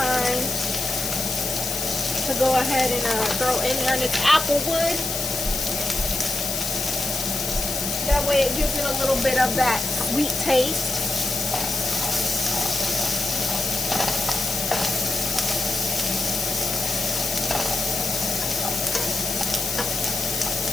to go ahead and throw in there, and it's applewood. That way it gives it a little bit of that sweet taste.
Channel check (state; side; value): noise; left; hiss, 3 dB below the sound